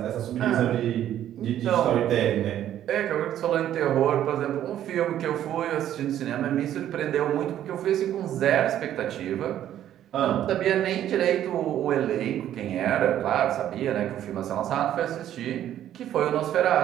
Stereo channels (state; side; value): quieter; left; 11.4 dB